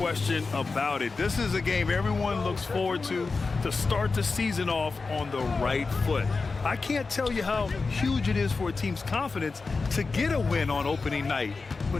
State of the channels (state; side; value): quieter; right; 4.2 dB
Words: about it. This is a game everyone looks forward to start the season off on the right foot. I can't tell you how huge it is for a team's confidence to get a win on opening night,